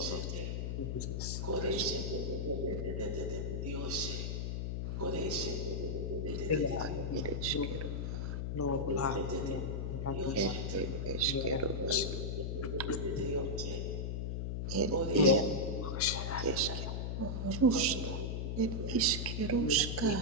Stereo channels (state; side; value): noise; left; hum, 2 dB below the sound